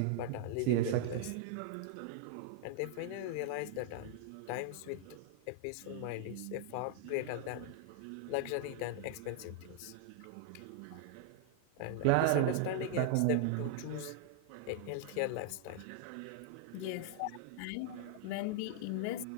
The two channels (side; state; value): both; different; correlation -0.01